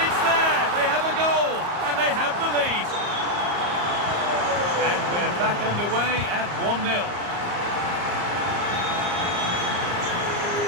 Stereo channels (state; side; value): late; left; 34 ms